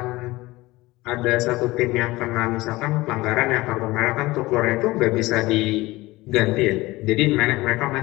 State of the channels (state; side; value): quieter; right; 19.9 dB